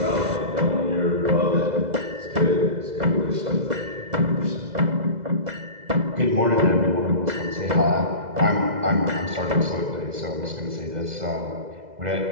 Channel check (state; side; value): late; left; 2.0 ms